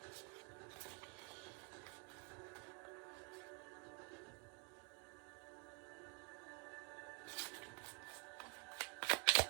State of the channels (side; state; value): left; quieter; 32.9 dB